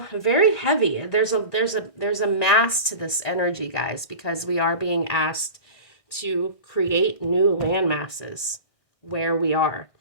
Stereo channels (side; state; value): right; late; 1.6 ms